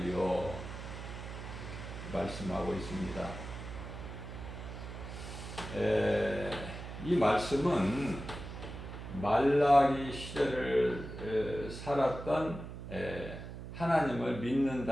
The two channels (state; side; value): noise; right; hum, 9 dB below the sound